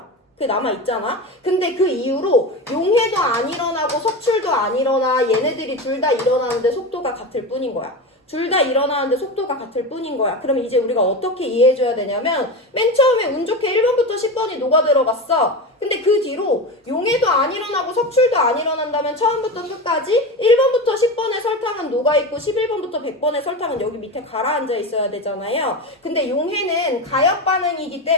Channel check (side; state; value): both; normal; correlation 0.23